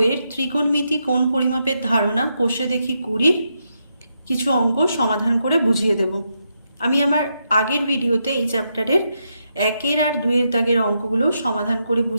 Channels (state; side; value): inverted; both; correlation -0.82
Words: ত্রিকোণমিতি কোণ পরিমাপের ধারণা কোষে দেখি 20 কিছু অঙ্ক সমাধান করে বুঝিয়ে দেব। আমি আমার আগের ভিডিওতে এই চ্যাপ্টারের 1 আর 2 দাগের অঙ্কগুলো সমাধান করে